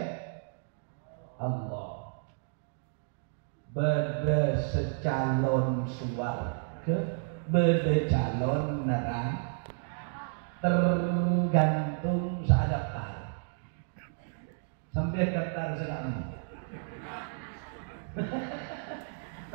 Allah. Beda secalon suwarga, beda calon neraka. Tergantung seadaptar sampai daftar sekarang.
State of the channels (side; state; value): left; silent; digital silence